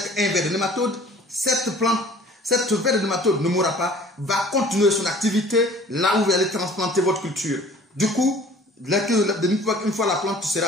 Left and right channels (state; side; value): normal; both; correlation 0.50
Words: un ver de nématode, cette ver de nématode ne mourra pas, va continuer son activité là où vous allez transplanter votre culture. Du coup, une fois la plante sera